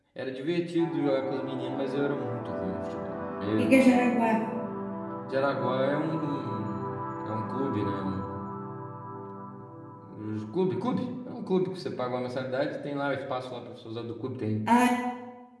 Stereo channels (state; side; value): identical; both; correlation 1.00